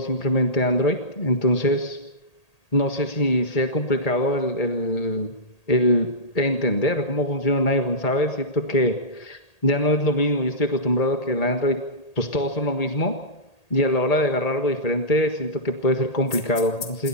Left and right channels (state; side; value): late; right; 1.8 ms